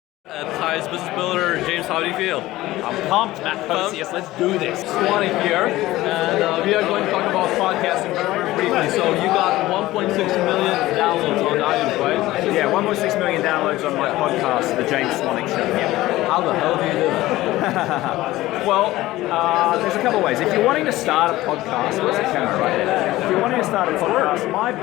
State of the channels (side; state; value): right; quieter; 17.0 dB